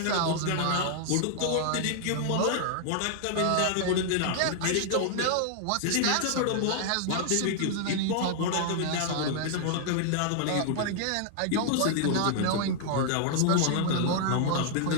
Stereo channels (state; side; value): different; both; correlation -0.01